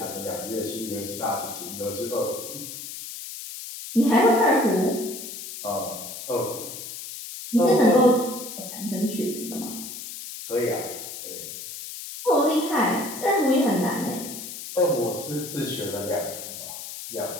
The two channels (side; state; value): left; noise; hiss, 10 dB below the sound